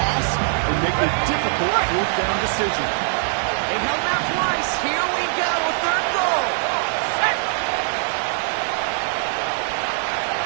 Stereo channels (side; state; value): left; silent; 56 dB below the other